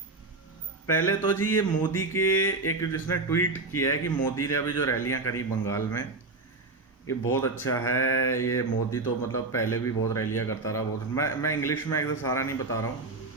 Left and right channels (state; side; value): quieter; left; 3.5 dB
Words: पहले तो जी ये मोदी के एक जिसने ट्वीट किया है कि मोदी ने अभी जो रैलियां करी बंगाल में, ये बहुत अच्छा है। ये मोदी तो मतलब पहले भी बहुत रैलियां करता रहा, बहुत। मैं इंग्लिश में एकदम सारा नहीं बता रहा हूँ,